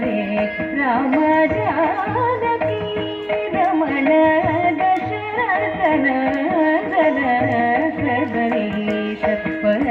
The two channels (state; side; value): identical; both; correlation 1.00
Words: राम जानकी रमण दशरथ नंदन सर्वरीश